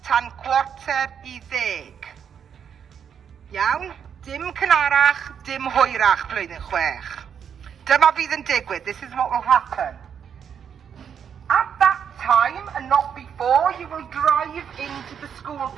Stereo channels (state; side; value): quieter; left; 7.8 dB